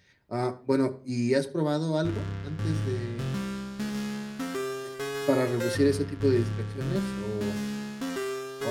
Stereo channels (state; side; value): identical; both; correlation 1.00